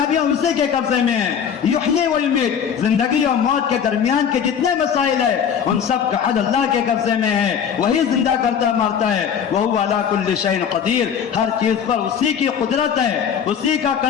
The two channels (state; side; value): quieter; right; 7.8 dB